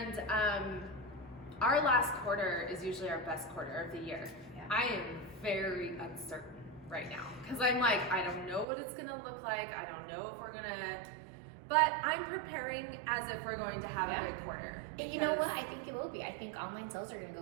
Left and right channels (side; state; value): left; drops out; at 8.7 s